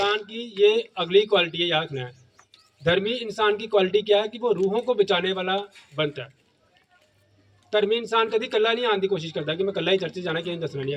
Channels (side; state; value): both; identical; correlation 1.00